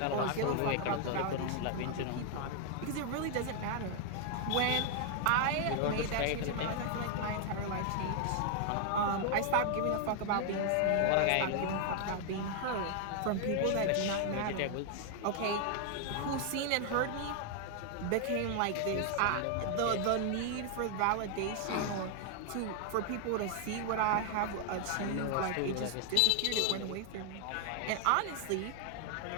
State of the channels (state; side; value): different; both; correlation 0.00